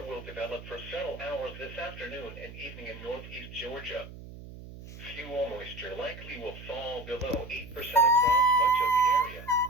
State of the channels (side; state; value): right; noise; hum, 14 dB below the sound